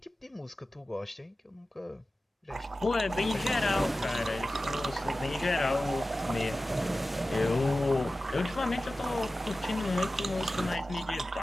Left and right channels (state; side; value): normal; both; correlation 0.95